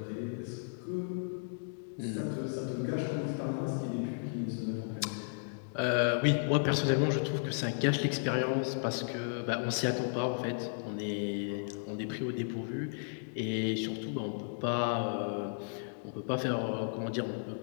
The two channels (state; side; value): silent; right; digital silence